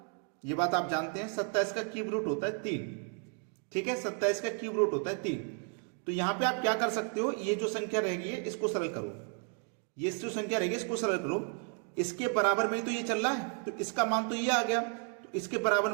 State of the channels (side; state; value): left; quieter; 39.9 dB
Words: ये बात आप जानते हैं। 27 का क्यूब रूट होता है 3। ठीक है, 27 का क्यूब रूट होता है 3। तो यहां पे आप क्या कर सकते हो, ये जो संख्या रहेगी इसको सरल करो, ये जो संख्या रहेगी इसको सरल करो, इसके बराबर में ही तो ये चल रहा है, तो इसका मान तो ये आ गया, तो इसके बराबर